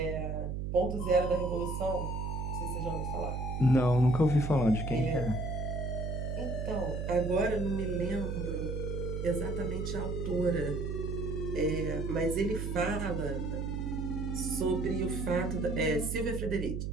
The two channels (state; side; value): noise; right; hum, 3 dB below the sound